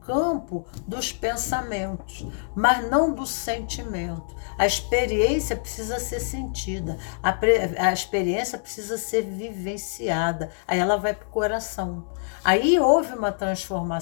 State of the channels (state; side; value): silent; right; digital silence